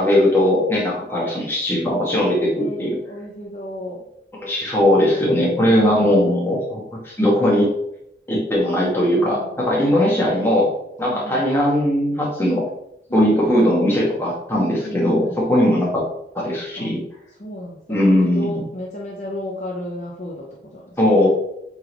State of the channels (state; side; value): normal; both; correlation 0.68